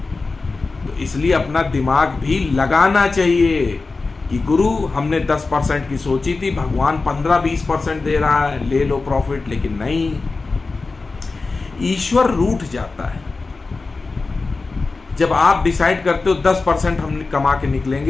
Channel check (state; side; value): quieter; right; 3.9 dB